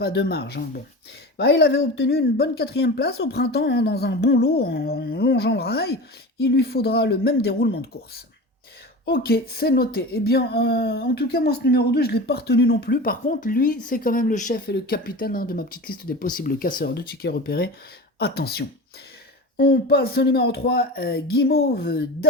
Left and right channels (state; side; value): normal; both; correlation 0.31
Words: de marge, hein. Bon. Il avait obtenu une bonne 4e place au printemps, hein, dans un bon lot en longeant le rail. Il lui faudra le même déroulement de course. Ok, c'est noté. Eh bien, en tout cas, moi, ce numéro 2, je ne l'ai pas retenu non plus. Par contre, lui, c'est quand même le chef et le capitaine, hein, de ma petite liste des possibles casseurs de tickets repérés. Attention. On passe au numéro 3, Guimauve